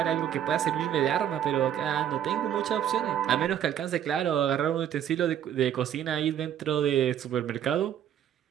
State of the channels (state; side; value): quieter; left; 10.0 dB